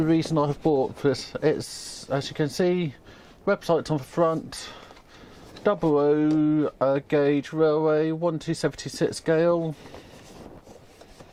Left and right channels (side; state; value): both; identical; correlation 1.00